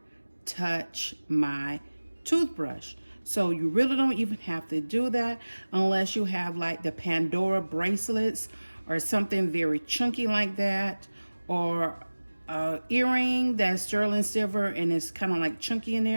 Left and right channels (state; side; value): inverted; both; correlation -1.00